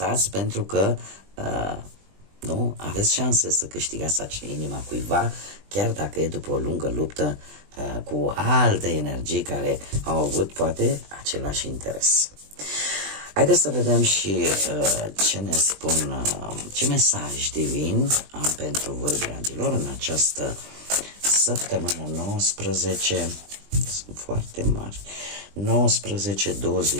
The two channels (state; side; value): late; left; 20 ms